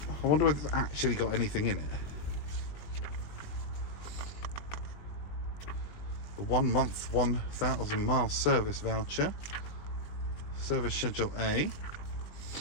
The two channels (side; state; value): right; late; 20 ms